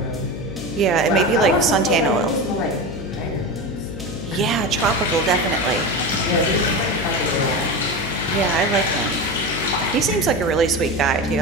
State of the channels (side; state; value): left; noise; hum, 9 dB below the sound